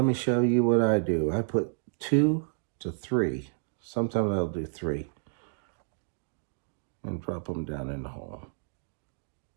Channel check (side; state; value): left; silent; digital silence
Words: me show you what I do. I put 2 to 3. Sometimes I'll do 3. And drop them down in the hole.